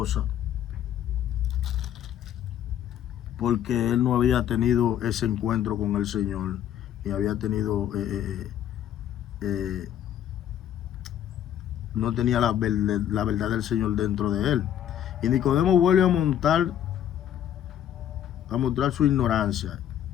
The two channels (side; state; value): right; quieter; 10.6 dB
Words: porque él no había tenido ese encuentro con el Señor y había tenido no tenía la verdad del Señor dentro de él. Y Nicodemo vuelve a mostrar su ignorancia